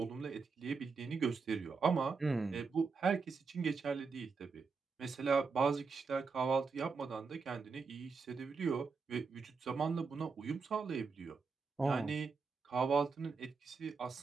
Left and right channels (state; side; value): quieter; left; 4.9 dB